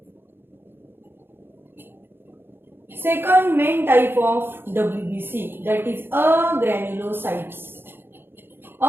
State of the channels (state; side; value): late; left; 0.10 ms